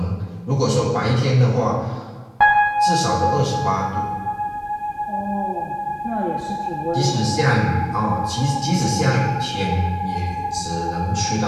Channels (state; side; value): identical; both; correlation 1.00